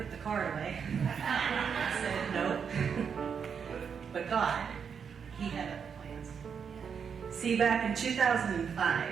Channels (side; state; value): left; quieter; 6.8 dB